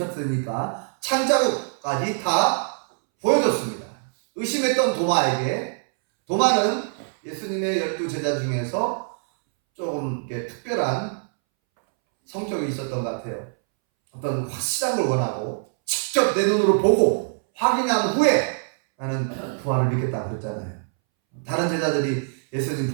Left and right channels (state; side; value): silent; left; 63 dB below the other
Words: 창자국까지 다 보여줬습니다. 의심했던 도마는 예수님의 12 제자 중에서 조금 특별한 성격이 있었던 것 같아요. 어떤 확실한 걸 원하고 직접 내 눈으로 보고 확인한 후에 나는 부활을 믿겠다 그랬잖아요. 다른 제자들이 예수님